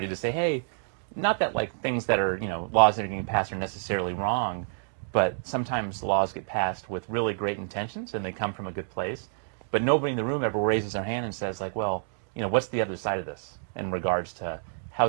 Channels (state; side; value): silent; left; digital silence